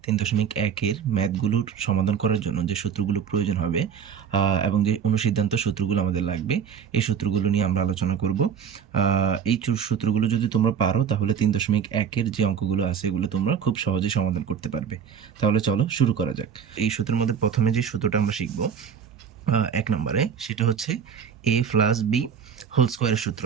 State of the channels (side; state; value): left; quieter; 7.4 dB